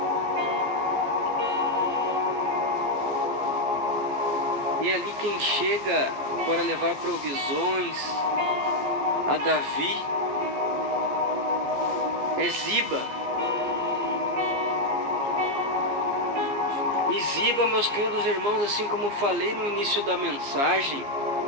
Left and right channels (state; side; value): late; left; 15 ms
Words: E ali quem chega para levar provisões a Davi é Ziba. E Ziba, meus queridos irmãos, assim como eu falei no início da mensagem,